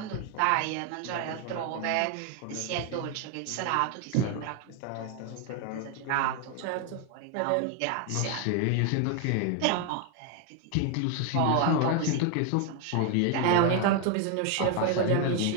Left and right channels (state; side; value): different; both; correlation 0.01